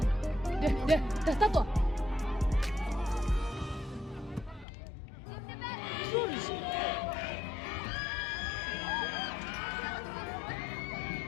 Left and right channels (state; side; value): drops out; right; at 4.7 s